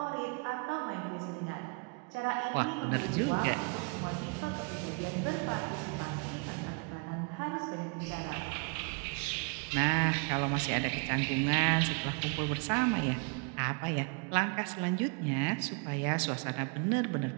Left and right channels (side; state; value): left; quieter; 35.2 dB